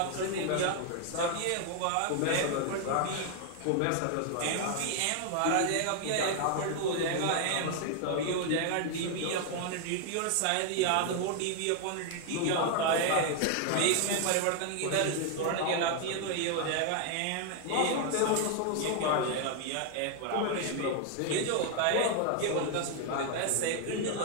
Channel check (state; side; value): different; both; correlation 0.00